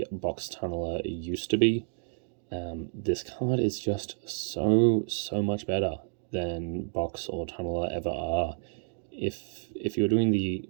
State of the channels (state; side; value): silent; left; digital silence